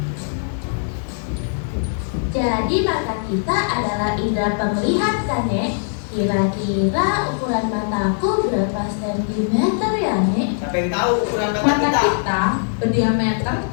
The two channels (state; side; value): silent; right; digital silence